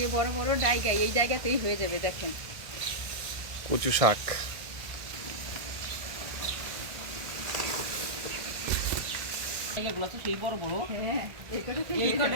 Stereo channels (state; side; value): late; left; 1.6 ms